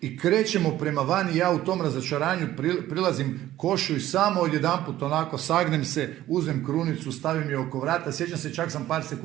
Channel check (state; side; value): quieter; left; 14.0 dB